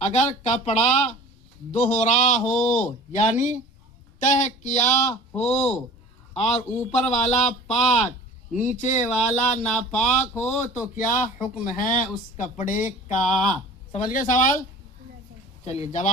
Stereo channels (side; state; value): both; normal; correlation 0.43